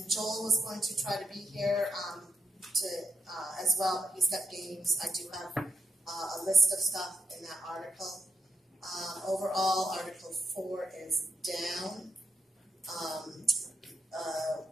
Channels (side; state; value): both; normal; correlation 0.81